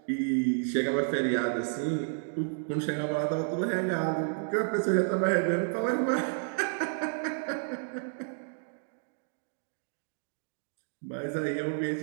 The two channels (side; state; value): left; silent; digital silence